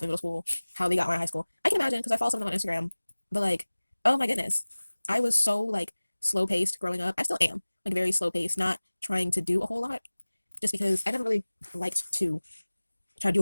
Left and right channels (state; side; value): inverted; both; correlation -1.00